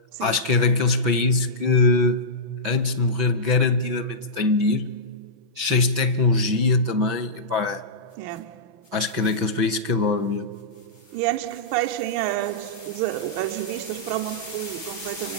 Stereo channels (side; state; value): left; late; 6.1 ms